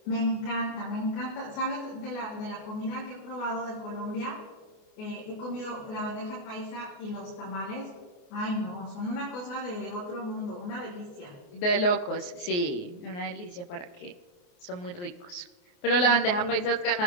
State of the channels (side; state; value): right; late; 28 ms